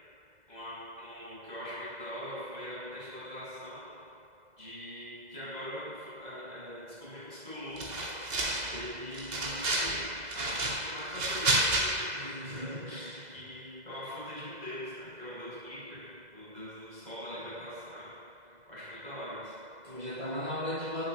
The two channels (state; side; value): late; left; 2.0 ms